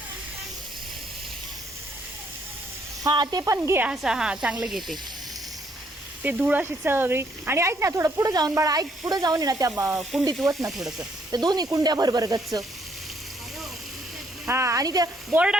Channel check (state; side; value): normal; both; correlation 0.69